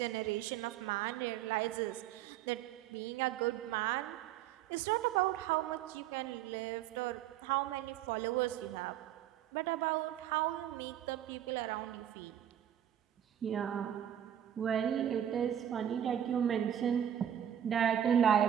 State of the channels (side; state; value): left; quieter; 10.3 dB